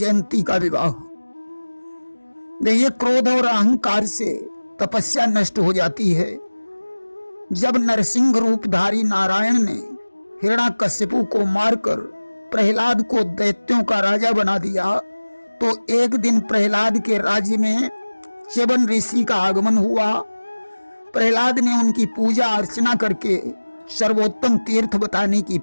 का विवाह। देखिए, क्रोध और अहंकार से तपस्या नष्ट हो जाती है। जब नरसिंह रूपधारी नारायण ने हिरण्याकश्यपु को मारकर प्रहलाद को दैत्यों का राजा बना दिया, तो एक दिन प्रहलाद के राज्य में च्यवन ऋषि का आगमन हुआ। प्रहलाद ने उनकी पूजा अर्चना करके सर्वोत्तम तीर्थ बताने की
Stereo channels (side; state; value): both; inverted; correlation -1.00